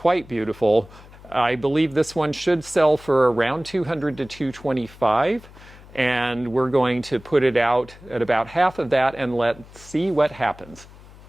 beautiful. I believe this one should sell for around $200 to $225. And we're going to put it out at about half of that and let's see what happens.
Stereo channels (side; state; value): left; noise; hum, 21 dB below the sound